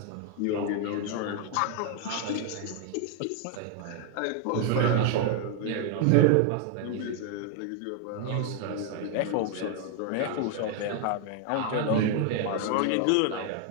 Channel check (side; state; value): both; different; correlation 0.00